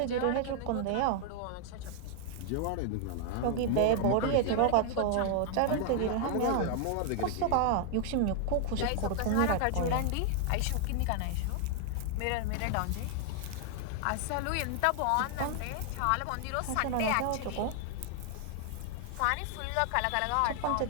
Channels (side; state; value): both; different; correlation 0.00